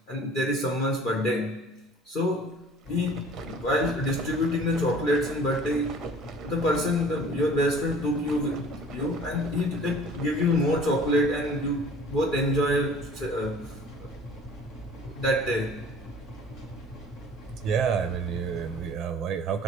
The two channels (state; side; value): normal; both; correlation 0.48